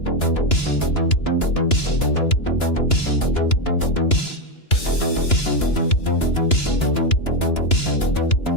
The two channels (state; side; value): late; right; 2.9 ms